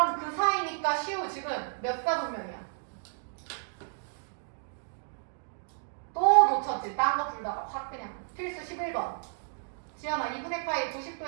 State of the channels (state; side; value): silent; left; digital silence